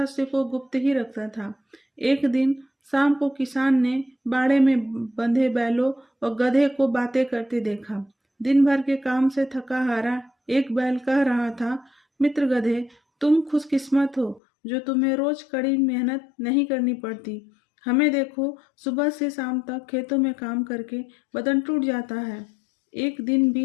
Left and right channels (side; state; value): right; drops out; at 14.4 s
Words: को गुप्त ही रखता था। एक दिन शाम को किसान ने बाड़े में बंधे बैलों और गधे को बातें करते देखा। दिन भर के काम से थका हारा एक बैल कह रहा था, मित्र गधे, तुम खुशकिस्मत हो जो तुम्हें रोज कड़ी मेहनत नहीं करनी पड़ती। हमें देखो, सुबह से शाम तक खेतों में काम करके बदन टूट जाता है। एक दिन